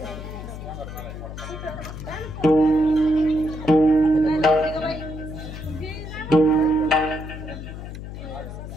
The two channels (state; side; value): noise; left; hum, 10 dB below the sound